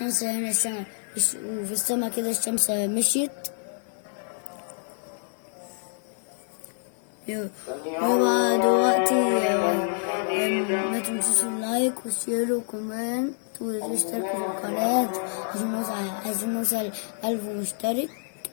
هنا وفي السما كده الشمس مشيت. وبقى دلوقتي ما تنسوش اللايك والشير وكومنت واشتركوا في القناة عشان نوصل 1000 مشترك.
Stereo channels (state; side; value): silent; right; 60 dB below the other